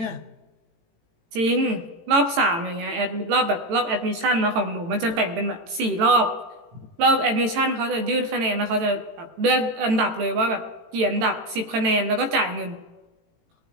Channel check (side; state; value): left; late; 18 ms